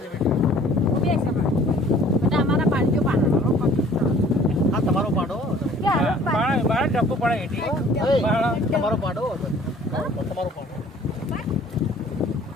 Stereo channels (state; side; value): normal; both; correlation 0.53